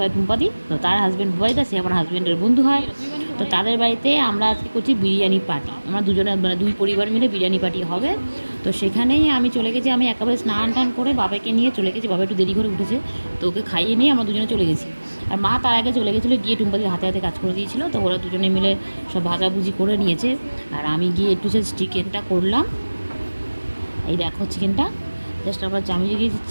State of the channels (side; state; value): both; inverted; correlation -1.00